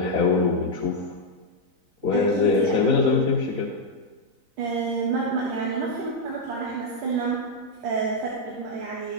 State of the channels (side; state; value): left; late; 4.0 ms